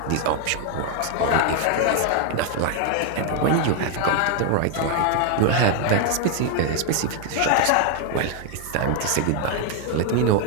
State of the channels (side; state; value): both; different; correlation 0.00